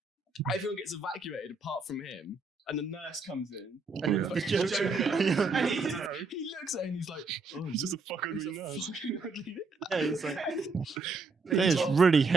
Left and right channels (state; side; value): quieter; left; 4.0 dB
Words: everyone gets evacuated apart from him, and the nurse comes in, and it's like, and he looks at it and he's like, "Oh, he's just a fucking ugly nurse." Yeah, he's like, there's really